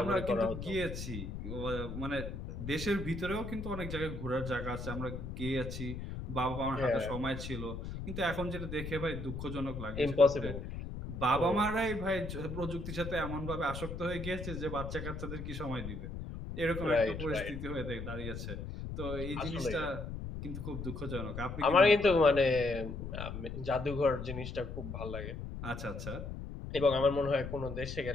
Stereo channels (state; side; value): noise; left; rumble, 7 dB below the sound